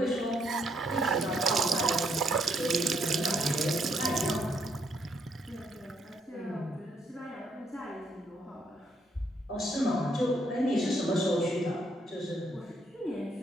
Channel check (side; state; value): both; normal; correlation 0.73